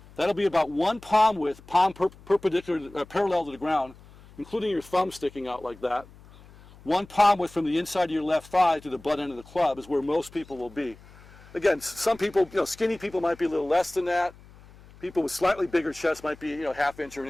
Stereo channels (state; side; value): noise; left; hum, 23 dB below the sound